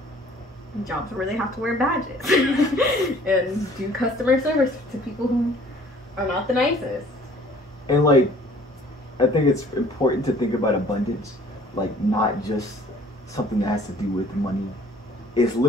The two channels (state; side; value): normal; both; correlation 0.54